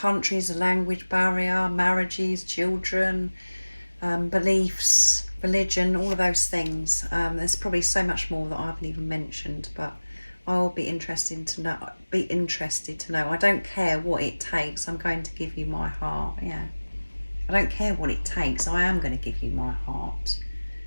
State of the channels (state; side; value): inverted; both; correlation -1.00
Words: a language barrier, marriages, children, beliefs, religion, all of those things. There's probably so much more that I haven't even mentioned, but I'll be interested to know. I don't care what it takes. I'm going to give you my heart. Yeah. I don't care what it takes. I am going to give you my heart.